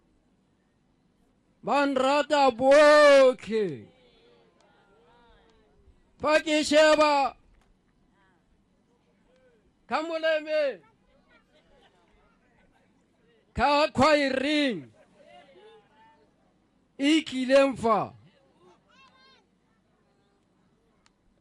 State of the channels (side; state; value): both; identical; correlation 1.00